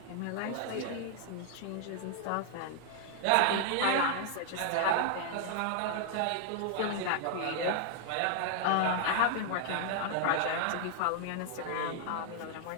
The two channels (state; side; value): different; both; correlation 0.00